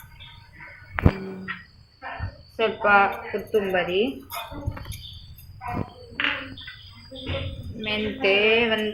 ಸ್ವಲ್ಪ ಕೊತ್ತಂಬರಿ, ಮೆಂತೆ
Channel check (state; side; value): identical; both; correlation 1.00